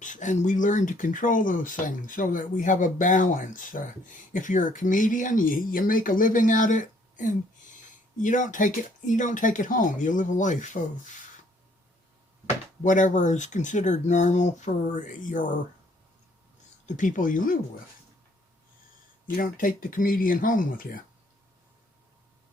and we learn to control those things so that we have a balance. If you're a comedian, you make a living at it, and you don't take it home. You live a life of whatever is considered normal for the people you live with. You don't take the comedian home with you.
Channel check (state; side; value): normal; both; correlation 0.64